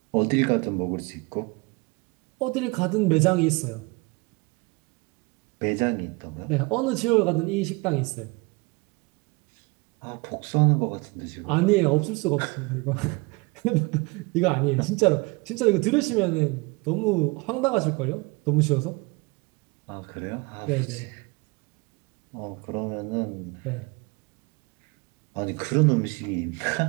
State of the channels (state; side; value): quieter; left; 26.6 dB